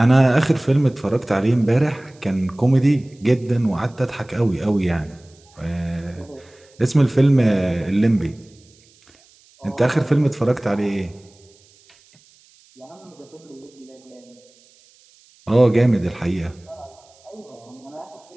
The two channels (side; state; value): right; noise; hiss, 30 dB below the sound